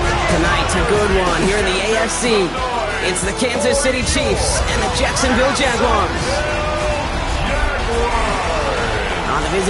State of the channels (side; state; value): both; identical; correlation 1.00